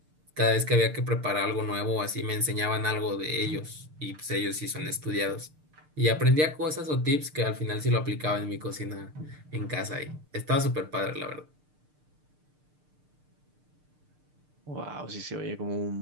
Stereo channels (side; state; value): left; late; 6.6 ms